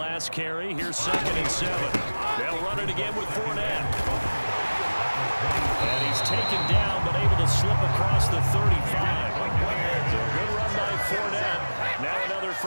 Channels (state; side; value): inverted; both; correlation -1.00